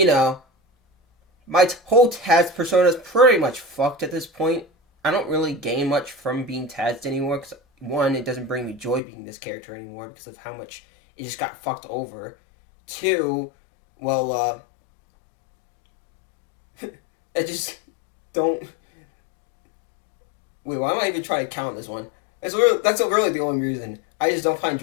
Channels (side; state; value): right; drops out; at 9.0 s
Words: my whole Taz persona is pretty much fucked at this point. I don't really gain much from being Taz anymore, because, one, it doesn't bring me joy being this character anymore because of how much it just got fucked over. 2, well, I just don't... Wait, why am I even trying to count this one? That's really the only reason. I just don't find